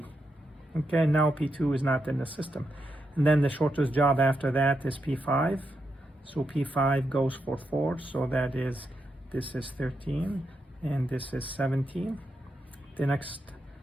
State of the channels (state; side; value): normal; both; correlation 0.84